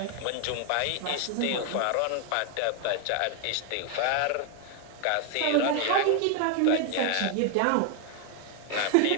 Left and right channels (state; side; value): different; both; correlation 0.00